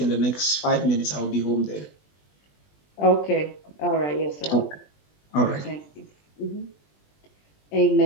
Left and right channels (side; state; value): right; late; 20 ms